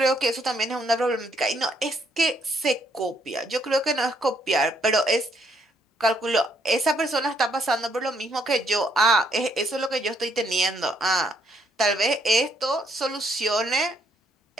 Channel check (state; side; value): normal; both; correlation 0.71